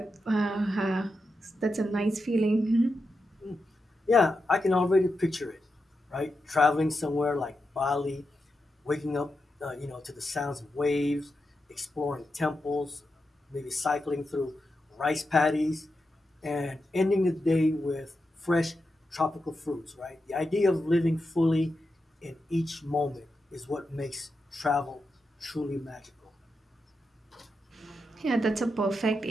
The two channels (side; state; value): both; normal; correlation 0.87